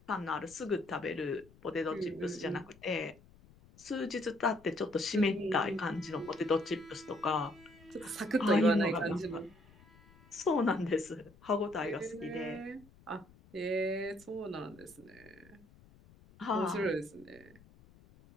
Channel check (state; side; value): noise; left; rumble, 25 dB below the sound